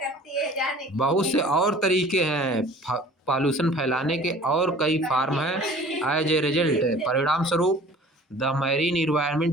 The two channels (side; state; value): both; normal; correlation 0.47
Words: बहुत से और तरीके हैं पॉल्यूशन फैलाने के, और कई फार्म हैं। एज ए रिजल्ट, परिणाम स्वरूप the marine